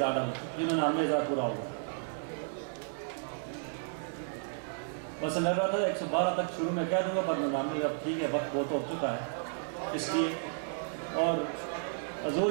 ڈالر، جنہوں نے 90,000 پورا ہوگا. بس میں رہا تھا 112 تک شروع میں کہہ دوں گا، پر 99 اب ٹھیک ہے، وقت بہت ہو چکا ہے اس لیے. اور حضور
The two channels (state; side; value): silent; left; digital silence